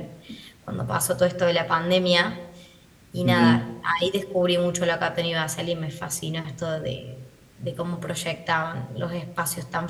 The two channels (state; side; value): identical; both; correlation 1.00